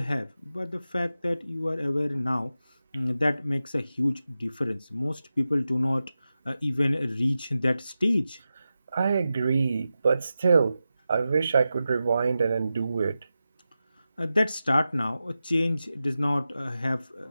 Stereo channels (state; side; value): inverted; both; correlation -0.92